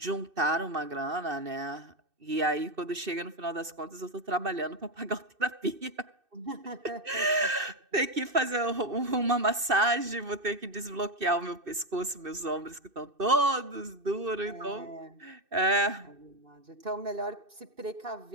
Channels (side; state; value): left; late; 2.6 ms